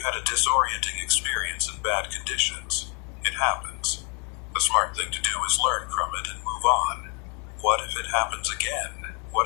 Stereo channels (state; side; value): quieter; right; 35.0 dB